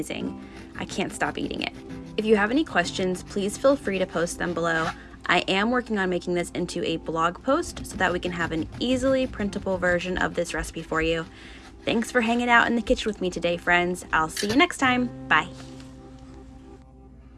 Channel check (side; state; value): both; identical; correlation 1.00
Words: I can't stop eating it. If you have any questions, please feel free to post them below. I am working on making this into a blog post so that we can have an easily printable version of this recipe for you. Thanks for hanging out in the kitchen with me today, friends. I'll see you next time. Bye.